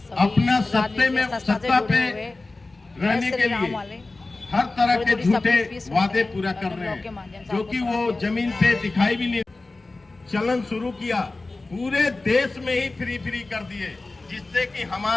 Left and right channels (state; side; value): quieter; right; 3.3 dB